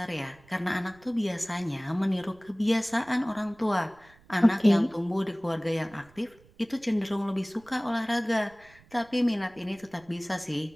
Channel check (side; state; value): right; noise; rumble, 27 dB below the sound